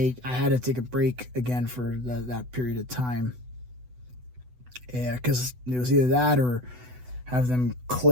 had to take a break again for that period of time. Yeah, because it was either that or have them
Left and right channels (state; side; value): late; left; 8.0 ms